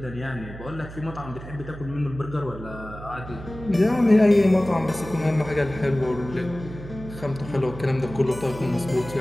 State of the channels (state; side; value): noise; right; hum, 13 dB below the sound